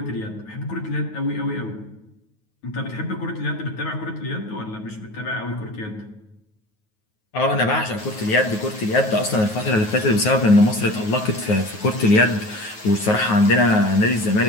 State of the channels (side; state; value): right; late; 9.4 ms